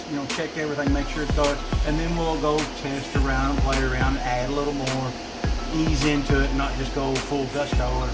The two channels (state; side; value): identical; both; correlation 1.00